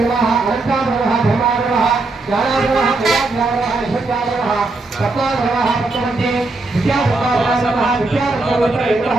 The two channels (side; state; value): left; quieter; 3.3 dB